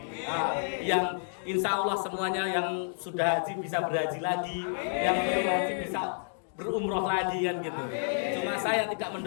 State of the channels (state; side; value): silent; right; digital silence